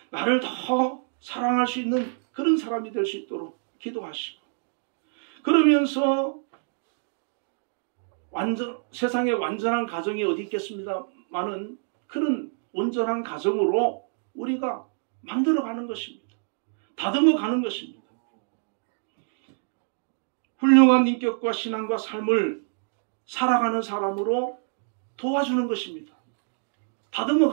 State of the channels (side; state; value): left; silent; digital silence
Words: 나를 더 사랑할 수 있는 그런 사람이 될 수 있도록 기도하시고 그러면서 세상에 완전한 가정이 어디 있겠습니다만은 그런 온전한 가정으로 우리가 만들어가는 것입니다. 다듬어가는 것입니다. 훌륭한 인격과 신앙과 삶을 살아가는 사람으로 도와주는 것입니다.